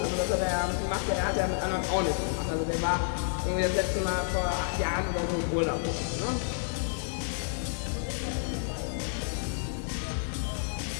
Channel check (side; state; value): right; silent; 58 dB below the other